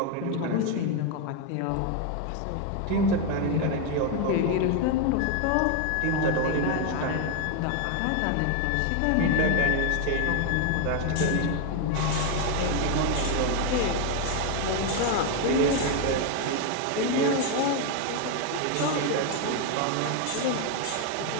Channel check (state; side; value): different; both; correlation 0.01